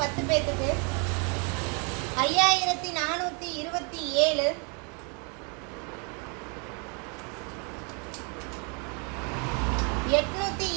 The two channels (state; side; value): quieter; left; 34.0 dB